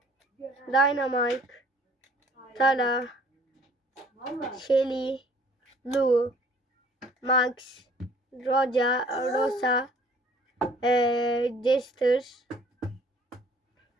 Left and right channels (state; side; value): normal; both; correlation 0.56